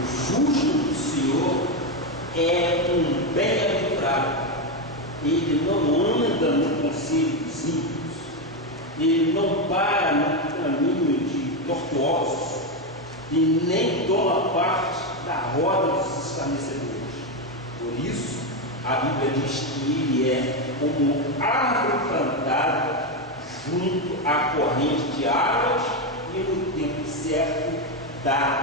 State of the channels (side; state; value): both; normal; correlation 0.08